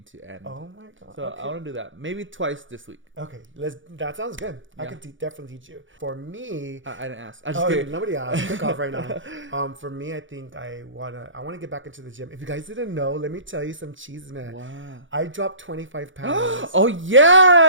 to end. Oh my God. So okay. I want to do that. Maybe twice this week. Okay, that sounds good. I Yeah. can definitely teach you. For me, I didn't ask. I just kidding. Nobody asked. Pick off right now. For me, I think I wanna get back into the gym. If you guys didn't know, let me tell you some cheese, man. Wow. I dropped 25 pounds. Oh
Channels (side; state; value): left; late; 0.56 ms